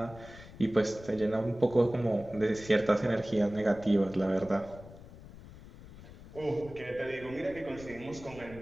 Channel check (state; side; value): noise; left; rumble, 17 dB below the sound